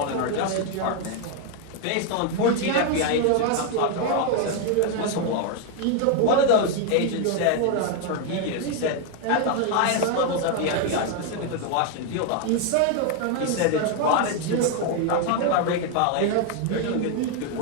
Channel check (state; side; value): different; both; correlation 0.01